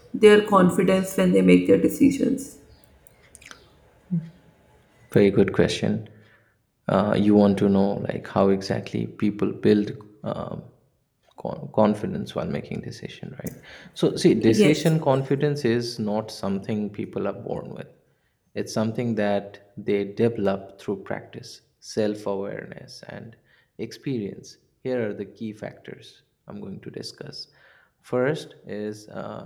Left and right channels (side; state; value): both; identical; correlation 1.00